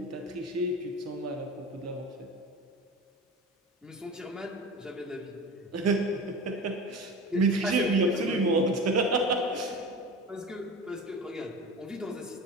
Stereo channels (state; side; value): normal; both; correlation 0.32